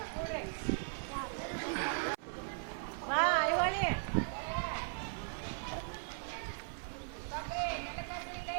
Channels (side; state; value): left; silent; 52 dB below the other